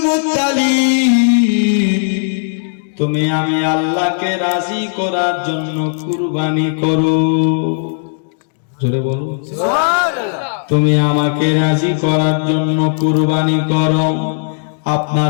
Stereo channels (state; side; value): silent; right; digital silence